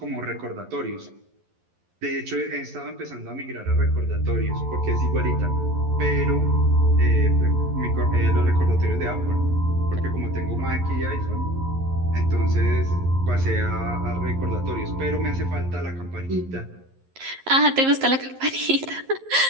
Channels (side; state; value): left; late; 11 ms